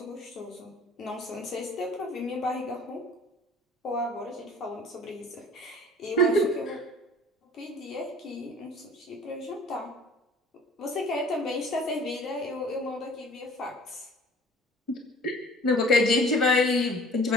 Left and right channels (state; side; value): normal; both; correlation 0.48